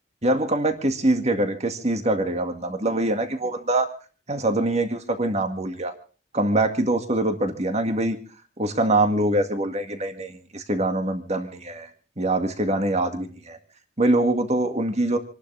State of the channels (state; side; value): normal; both; correlation 0.38